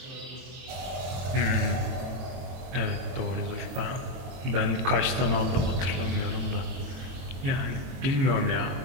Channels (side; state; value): left; late; 23 ms